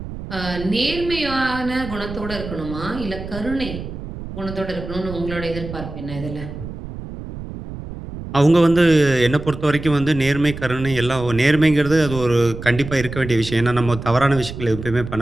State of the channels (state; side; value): noise; right; rumble, 10 dB below the sound